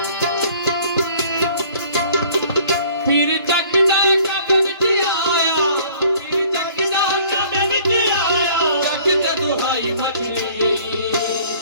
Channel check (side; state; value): both; inverted; correlation -0.54